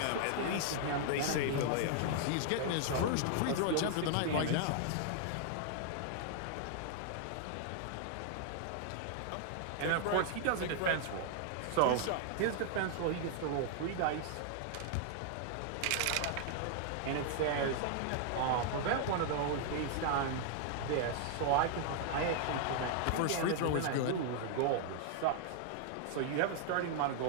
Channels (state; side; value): different; both; correlation 0.00